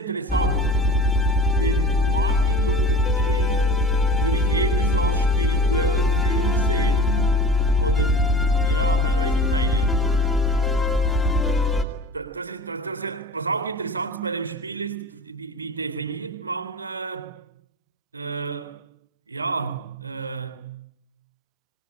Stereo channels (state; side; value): normal; both; correlation 0.37